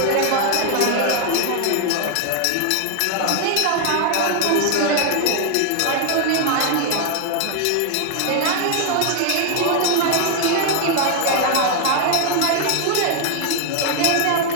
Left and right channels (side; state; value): both; different; correlation 0.00